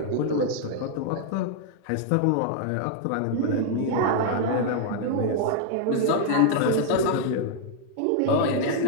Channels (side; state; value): both; different; correlation 0.00